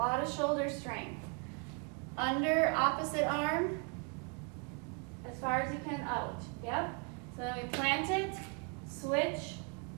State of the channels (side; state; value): left; quieter; 34.4 dB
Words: of shoulder strength. Under, opposite arm, as far as you can out. Yep. So then we plant it, switch,